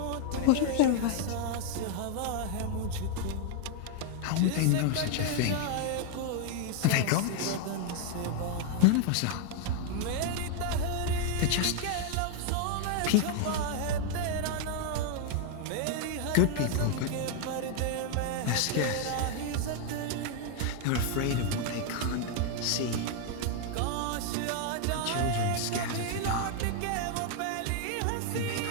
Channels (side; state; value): both; different; correlation 0.00